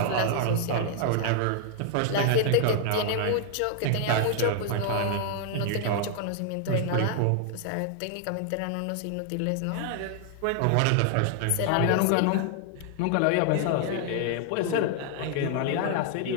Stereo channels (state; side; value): different; both; correlation 0.00